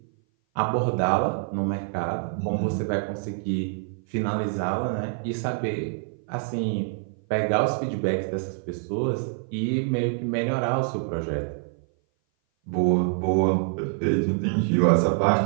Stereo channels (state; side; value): silent; left; 57 dB below the other